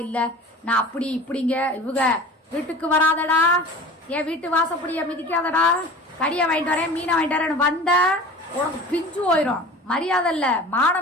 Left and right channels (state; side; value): normal; both; correlation 0.39